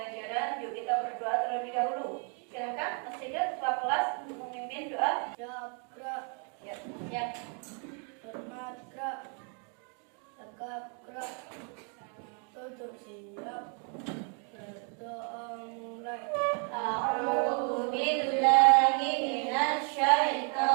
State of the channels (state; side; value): quieter; left; 39.8 dB